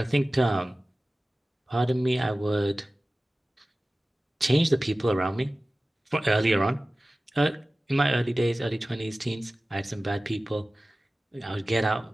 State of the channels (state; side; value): normal; both; correlation 0.96